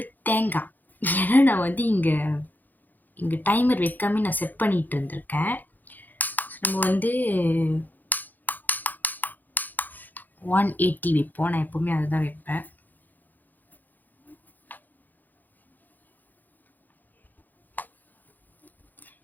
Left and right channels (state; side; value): late; right; 0.085 ms